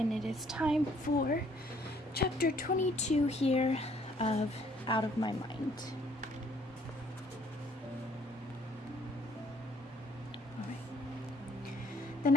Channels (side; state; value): both; normal; correlation 0.62